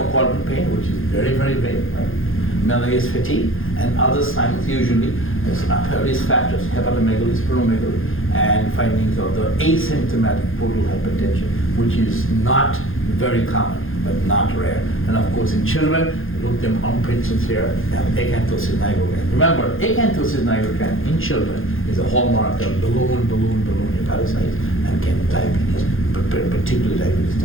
quadrant pain, which is very, very vague, right? Malaise, fatigue, and other signs usually risk factors, hepatomegaly, splenomegaly, and findings of the asymptomatic portal hypertension, which is not very common, but not rare. And of course, in children, look them armpits here, have acanthosis nigrocans. Remember, acanthosis nigrocans in children is a hallmark of balloon hepatocytes and can diabetes, particularly diabetes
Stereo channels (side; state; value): right; late; 0.60 ms